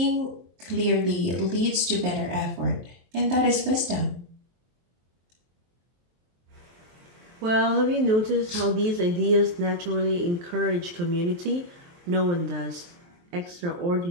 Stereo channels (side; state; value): left; late; 23 ms